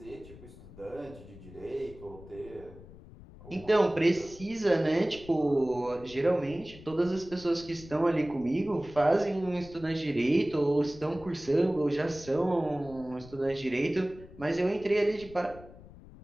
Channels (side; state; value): left; noise; rumble, 19 dB below the sound